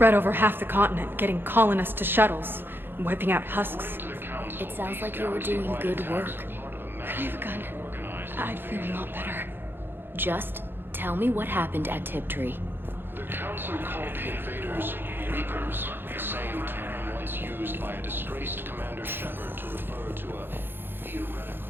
over half the continent, getting colonists to shuttles, wiping out husks. It sounds like you were doing good work. Could I have a gun? I'd feel a lot better. Just tell me what happened at Tiptree. The Council called the invaders Reapers, the same term once used by a disgraced Commander Shepard to refer to a theoretical.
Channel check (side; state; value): left; late; 0.10 ms